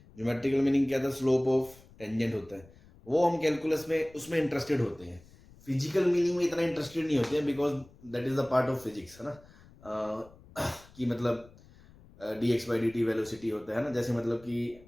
ज्योमेट्रिकल मीनिंग क्या था, स्लोप ऑफ टेंजेंट होता है, वो हम कैलकुलस में उसमें इंटरेस्टेड होते हैं। फिजिकल मीनिंग में इतना इंटरेस्टेड नहीं होते हैं because that is the part of physics, है ना। कि मतलब D X by D T velocity होता है ना, जैसे मतलब कि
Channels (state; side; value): noise; left; rumble, 24 dB below the sound